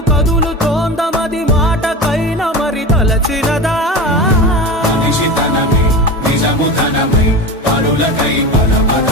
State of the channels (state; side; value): normal; both; correlation 0.28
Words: కదులుతోందమది మాటకైన మరి తలచినదా, మనిషితనమే నిజముతనమై పరులకై